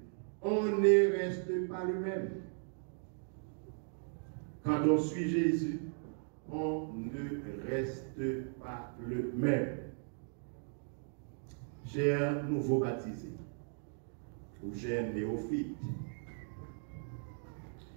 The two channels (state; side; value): silent; left; 53 dB below the other